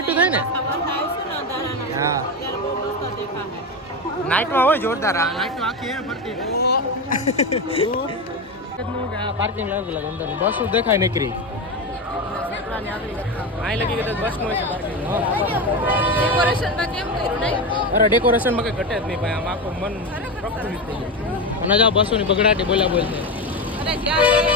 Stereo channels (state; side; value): normal; both; correlation 0.17